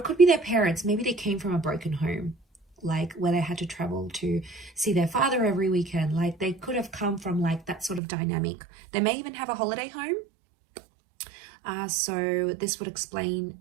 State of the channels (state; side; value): drops out; left; at 8.0 s